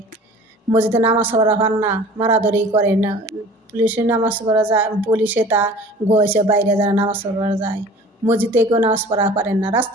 মসজিদে নামাজ পড়া পান না, মারাধরি করে না। পুলিশে নামাজ পড়া যায়, পুলিশে তা গোয়েছে বাইরে যারা নামাজ পড়া যায়। মসজিদে কেউ নামাজ পড়া পারেন না,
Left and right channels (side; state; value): both; normal; correlation 0.45